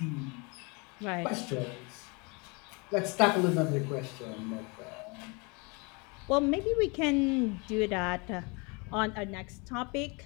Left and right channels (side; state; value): right; quieter; 30.2 dB